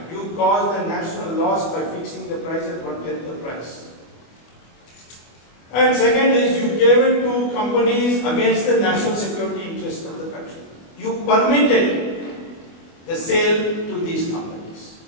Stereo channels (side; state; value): right; late; 25 ms